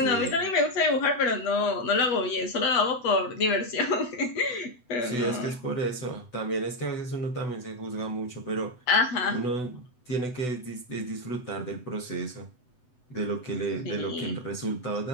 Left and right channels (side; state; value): right; late; 8.0 ms